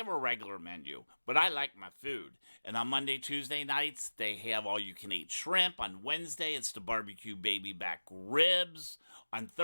a regular menu, but I like my food. And on Monday, Tuesday nights, they have all you can eat shrimp. On Wednesday, it's the barbecue baby back ribs. On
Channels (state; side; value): inverted; both; correlation -1.00